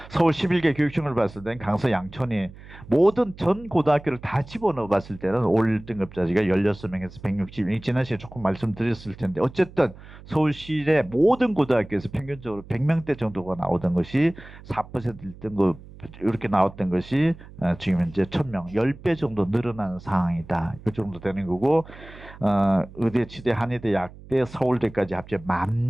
서울 11개 교육청을 봤을 때는 강서 양천이 모든 전 고등학교를 다 집어넣어 봤을 때는 올 등급자지가 16명에서 160명. 지난 시간에 조금 말씀드렸을 텐데 어쨌든 서울시의 모든 고등학교에서 평균적으로 100명대 정도가 나오던 것이 4% 1등급 이렇게 나왔던 것이 지금 현재 1000명, 10배 정도 늘어나는 상황이다. 이 정도 되는 거고 의대, 치대, 한의대, 약대, 서울대까지 합쳐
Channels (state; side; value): noise; right; hum, 18 dB below the sound